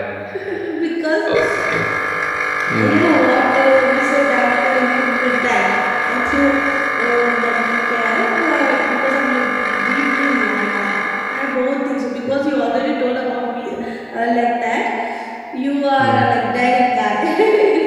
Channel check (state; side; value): identical; both; correlation 1.00